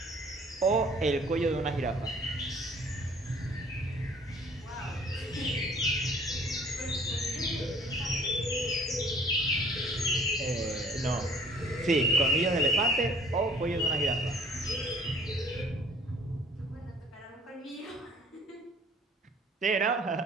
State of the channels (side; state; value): both; normal; correlation 0.54